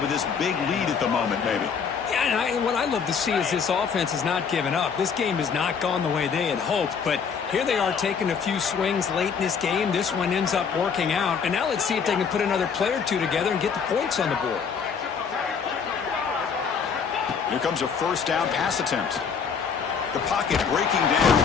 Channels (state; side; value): quieter; right; 6.3 dB